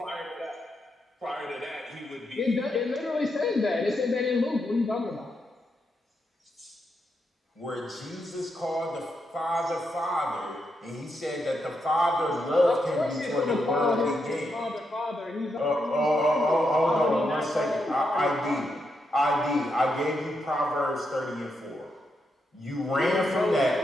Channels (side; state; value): both; normal; correlation 0.82